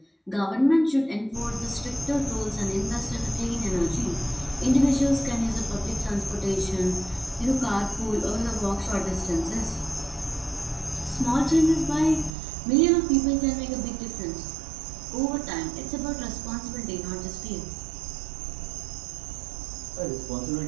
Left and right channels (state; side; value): drops out; left; at 12.3 s